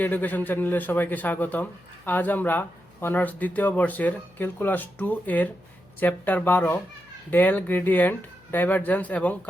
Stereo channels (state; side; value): noise; left; hum, 29 dB below the sound